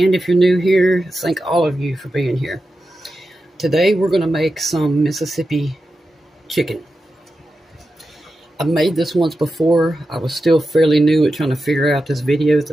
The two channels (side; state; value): both; normal; correlation 0.91